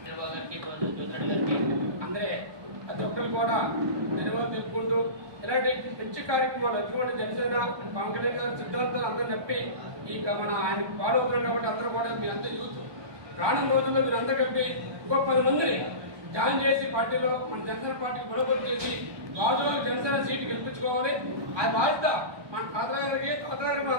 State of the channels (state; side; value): late; left; 1.2 ms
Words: వీరబాబు గారికి జ్యోతిరెడ్డి గారికి అందరే ప్రతి ఒక్కరు కూడా ధన్యవాదాలు తెలుపుకుంటూ ఇలాంటి మంచి కార్యక్రమాలు ఎందుకంటే జనసేన పవన్ కళ్యాణ్ గారి సిద్ధాంతాలు అందరూ నప్పి ఈ మన ఆయన ఫాలో అవుతున్నారు కాబట్టి అందరూ కూడా మీ అంతా యూత్ రానున్న రోజుల్లో మీరు అందరూ కలిపి ఇంకో 10 మందిని జాయిన్ చేసి పార్టీలో మన జనసేన పార్టీకి బలోపేతం చేసి గాజువాక జనసేన సీటు గెలిపించుకోవాలి. అది బాధ్యత మన తాతగారికి